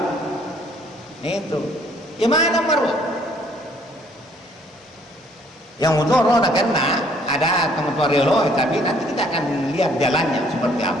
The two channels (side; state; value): both; normal; correlation 0.62